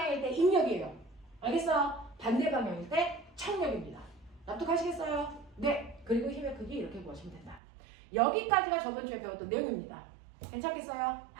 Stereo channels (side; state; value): left; drops out; at 7.6 s